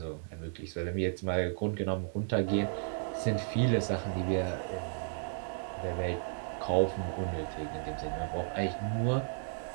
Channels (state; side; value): silent; left; digital silence